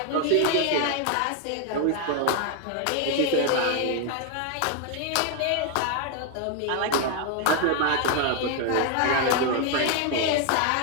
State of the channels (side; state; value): both; different; correlation 0.01